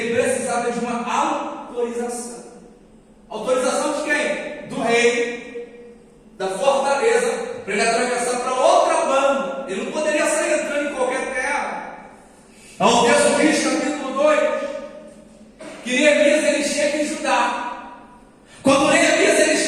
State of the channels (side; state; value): both; identical; correlation 1.00